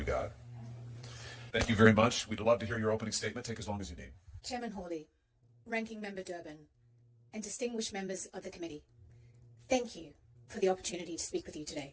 God. Thank you very much. We'd love to hear your opening statement. Take as long as you need. Chairman Hawley, Ranking Member Durbin, and distinguished members of the committee, thank you for the opportunity to speak with you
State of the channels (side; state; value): both; identical; correlation 1.00